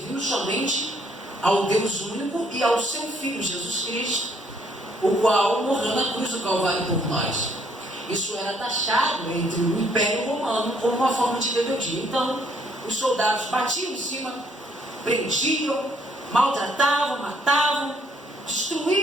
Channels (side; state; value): both; normal; correlation 0.67